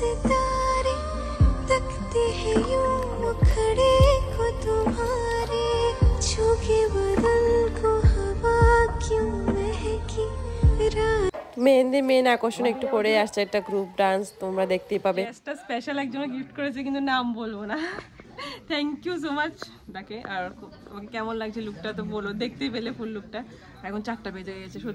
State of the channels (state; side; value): identical; both; correlation 1.00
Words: तकते हैं यूं मुखड़े को तुम्हारे, छूके बदन को हवा क्यों महकी रात। মেহেন্দি মেন আকর্ষণ একটু করে আসছে একটা গ্রুপ ডান্স, তোমরা দেখতেই পাবে। একটা স্পেশাল একজন গিফট করেছে কিন্তু নাম বলবো না। থ্যাংক ইউ সো মাচ তাকে। আর তোমাকে কেমন লাগছে লুকটা তো বলো, দেখতেই পেলে ফুল লুকটা। এখন 4টা বেজে গেছে।